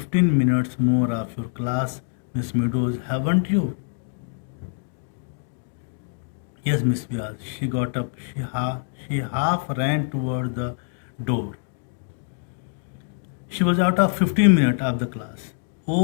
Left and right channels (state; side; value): silent; right; digital silence